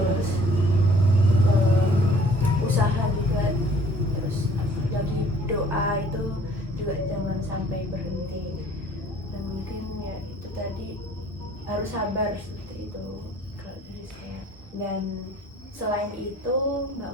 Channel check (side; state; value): both; normal; correlation 0.55